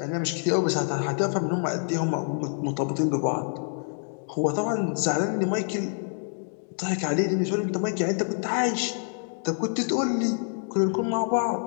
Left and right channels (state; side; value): silent; right; 60 dB below the other